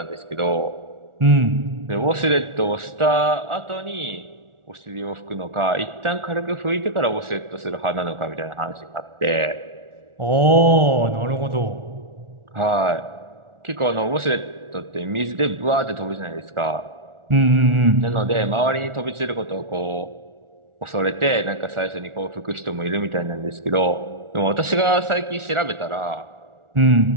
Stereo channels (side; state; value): left; late; 1.4 ms